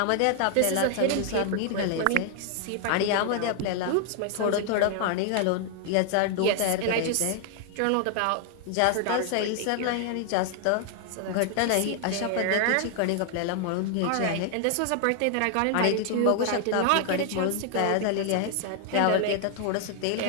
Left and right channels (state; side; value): different; both; correlation 0.00